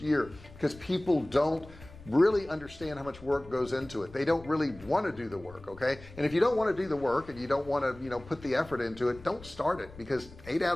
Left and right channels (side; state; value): left; noise; rumble, 19 dB below the sound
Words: year because people don't really understand how much work goes into it. They don't really want to do the work. Okay, and if you don't want to do the work and you don't want to put the effort into it, don't start it, because 8